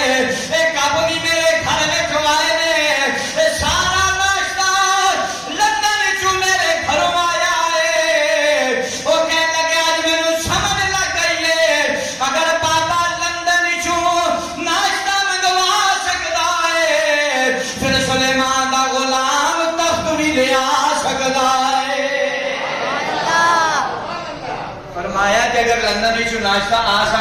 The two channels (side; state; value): both; identical; correlation 1.00